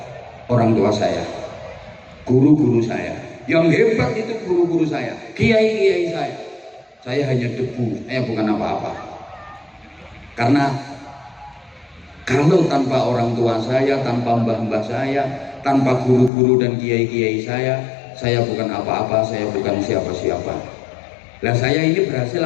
orang tua saya, guru-guru saya. Yang hebat itu guru-guru saya, kiai-kiai saya. Saya hanya debu, saya bukan apa-apa. Karena kalau tanpa orang tua saya, tanpa mbah-mbah saya, tanpa guru-guru dan kiai-kiai saya bukan apa-apa, saya bukan siapa-siapa. Lah saya ini berhasil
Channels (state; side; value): drops out; right; at 16.3 s